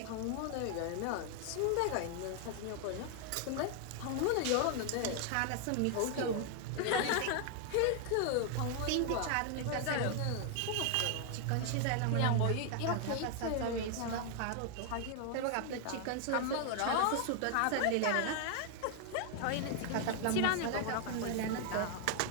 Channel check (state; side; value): different; both; correlation 0.00